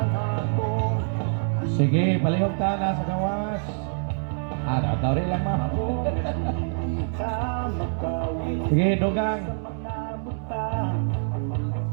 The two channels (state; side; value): silent; left; 61 dB below the other